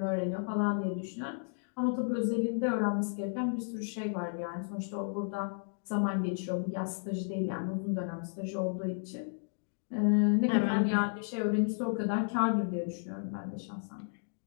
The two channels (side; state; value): right; silent; digital silence